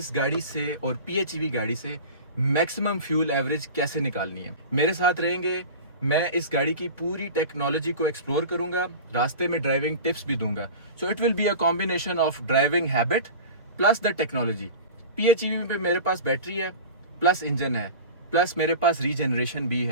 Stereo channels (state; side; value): inverted; both; correlation -0.33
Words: गाड़ी से और PHEV गाड़ी से मैक्सिमम फ्यूल एवरेज कैसे निकालनी है। मेरे साथ रहेंगे, मैं इस गाड़ी की पूरी टेक्नोलॉजी को एक्सप्लोर करूंगा, रास्ते में ड्राइविंग टिप्स भी दूंगा। So it will be a combination of driving habit plus the technology. PHEV पे मेरे पास बैटरी है, प्लस इंजन है, प्लस मेरे पास रीजनरेशन भी